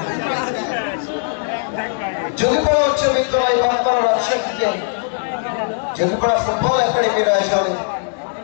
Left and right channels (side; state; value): right; silent; digital silence